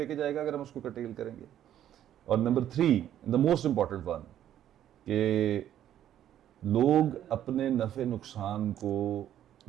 जाएगा अगर हम उसको कटेल करेंगे। और number 3, the most important one, कि लोग अपने नफ़े नुकसान को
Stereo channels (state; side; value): quieter; left; 11.2 dB